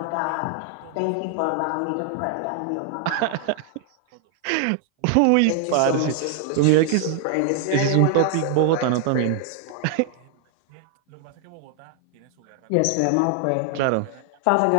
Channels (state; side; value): different; both; correlation 0.00